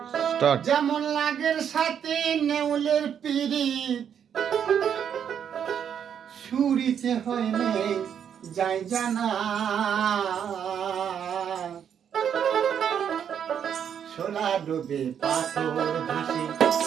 Start. যেমন লাগের সাথে নেউলের পিরিত, সুরিতে হয় নেই যাই জানা, শোলা ডোবে পাথর ভাসে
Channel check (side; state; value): left; quieter; 8.4 dB